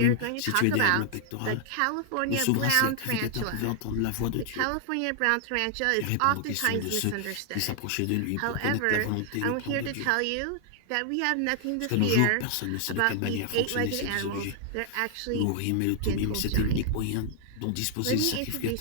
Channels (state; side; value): different; both; correlation 0.00